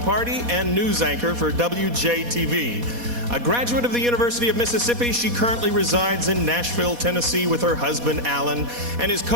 Party, and news anchor for WJTV. A graduate of the University of Mississippi, she currently resides in Nashville, Tennessee with her husband, Alan, and is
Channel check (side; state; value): left; late; 4.2 ms